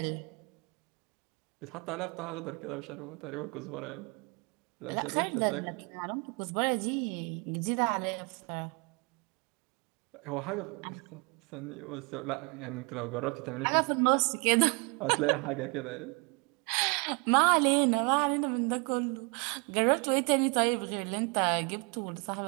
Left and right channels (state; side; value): quieter; left; 32.5 dB